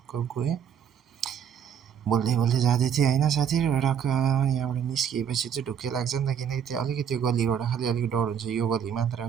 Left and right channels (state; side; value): quieter; left; 8.2 dB